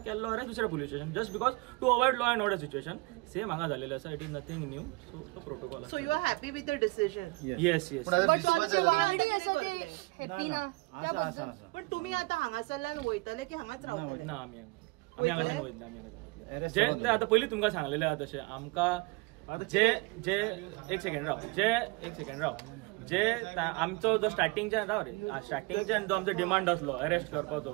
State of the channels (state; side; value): quieter; left; 26.4 dB